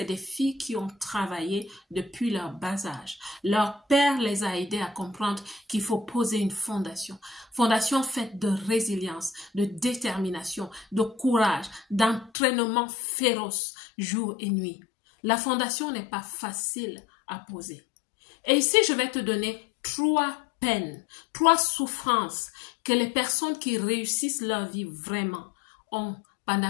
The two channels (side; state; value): right; drops out; at 12.3 s